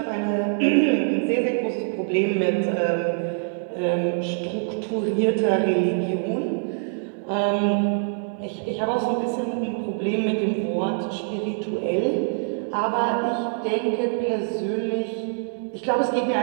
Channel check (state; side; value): silent; left; digital silence